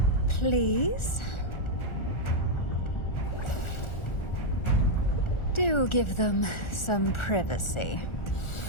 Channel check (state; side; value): late; right; 1.4 ms